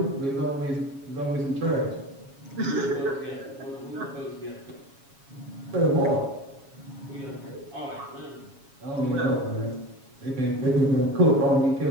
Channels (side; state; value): left; late; 7.2 ms